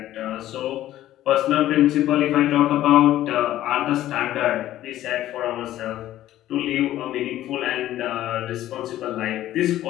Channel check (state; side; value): quieter; right; 13.6 dB